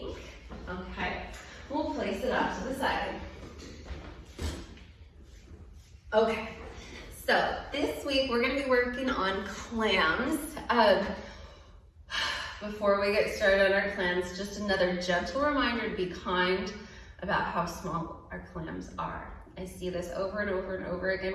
Okay, we'll place it off to the side. Okay, so this week we're going to be working on clams. Before we get started on our clams, just another gentle reminder to be kind about how small our clams are. I see this over and over and over again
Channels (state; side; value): identical; both; correlation 1.00